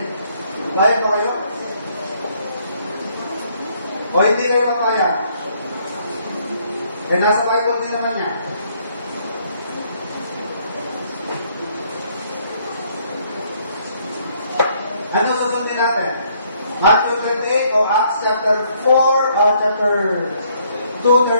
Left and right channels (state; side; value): inverted; both; correlation -0.67